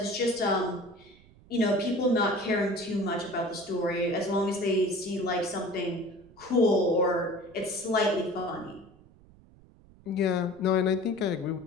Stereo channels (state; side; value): noise; right; rumble, 25 dB below the sound